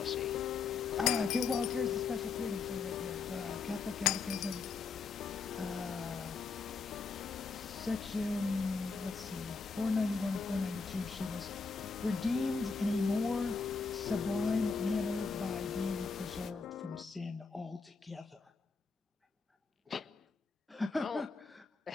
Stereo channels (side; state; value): right; quieter; 4.8 dB